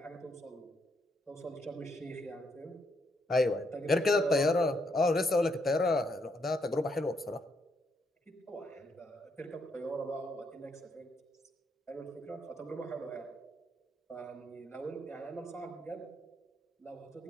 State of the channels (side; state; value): both; normal; correlation 0.76